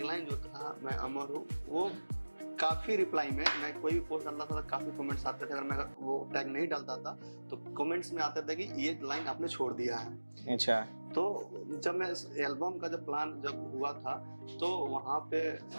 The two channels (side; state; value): both; inverted; correlation -1.00